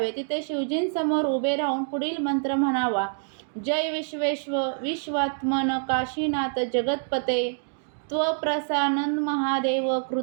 तिथे शिवजींसमोर उभे राहून पुढील मंत्र म्हणावा. जय विश्वेश्व विश्वात्मन काशीनाथ जगतपते त्वप्रसानन महादेव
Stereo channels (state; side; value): silent; left; 61 dB below the other